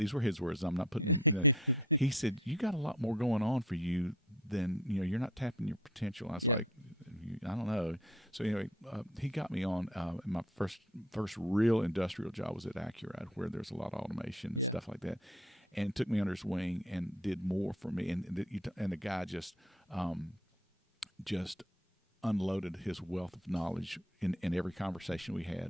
were his words. I'm not putting. He said, you got a lot more going on for you than you're not tapping your potential. I was like, I don't know. So anyway, he got me on. My first real industrial job was at Accurate, where there's a lot of automation and stuff like that, and took me under his wing and did more for me. And the guy just unloaded his wealth of knowledge in every conversation we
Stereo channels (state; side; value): normal; both; correlation 0.52